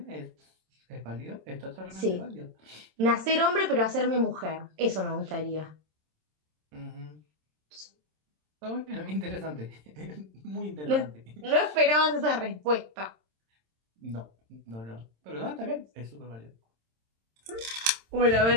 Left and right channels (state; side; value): late; left; 27 ms